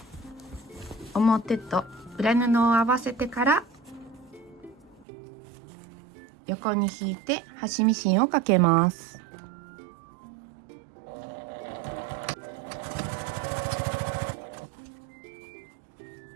表と裏布を合わせてから横に引いて端ミシンをかけます。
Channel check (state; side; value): drops out; left; at 5.1 s